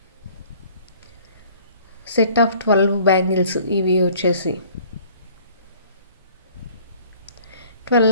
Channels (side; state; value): both; inverted; correlation -0.53